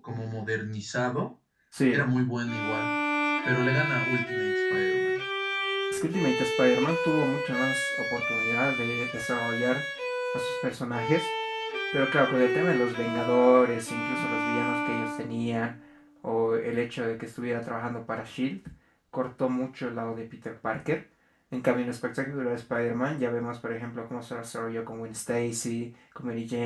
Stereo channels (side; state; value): both; identical; correlation 1.00